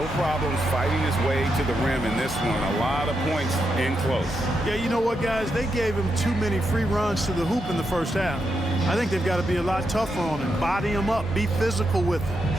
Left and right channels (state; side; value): normal; both; correlation 0.83